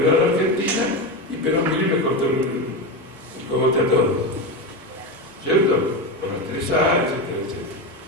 a la Argentina, y Perón vino y le cortó el cogote a todos. ¿Cierto? Por las 3A, etcétera, etcétera.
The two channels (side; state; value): both; normal; correlation 0.17